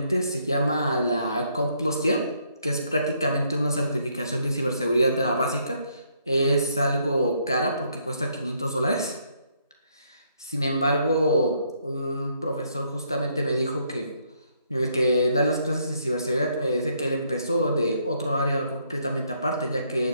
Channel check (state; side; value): inverted; both; correlation -0.71